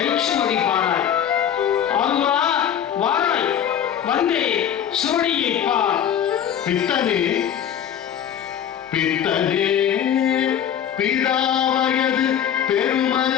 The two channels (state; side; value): quieter; right; 9.3 dB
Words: பாராய். ஆறுவா வாராய், வந்தே சுவடியை பார். பித்தனே பித்தனே பிதாவயது